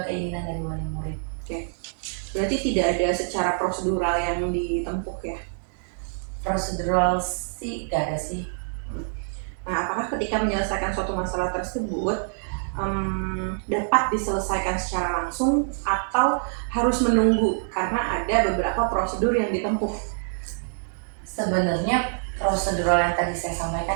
keinginan dari wali murid. Berarti tidak ada secara prosedural yang ditempuh ya. Prosedural sih gak ada sih. Nah, apakah ketika menyelesaikan suatu masalah tersebut dapat diselesaikan secara langsung atau harus menunggu karena ada beberapa prosedur yang ditempuh? Sebenarnya prosedural yang tadi saya sampaikan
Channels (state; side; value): silent; left; digital silence